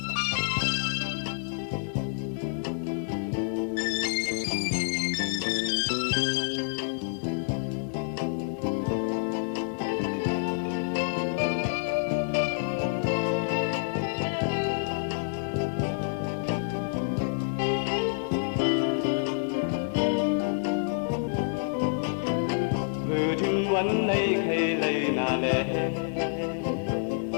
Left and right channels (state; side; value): silent; right; digital silence